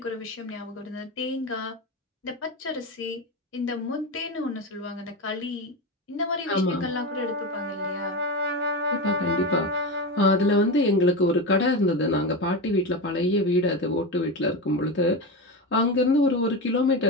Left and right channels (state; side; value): normal; both; correlation 0.19